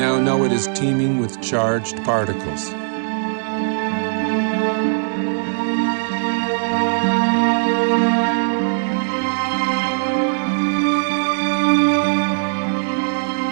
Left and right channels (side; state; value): left; silent; digital silence